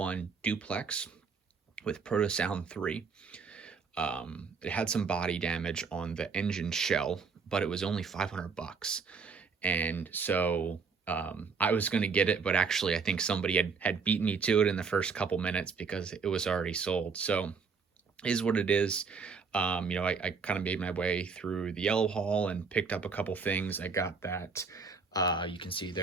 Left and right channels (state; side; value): quieter; left; 5.3 dB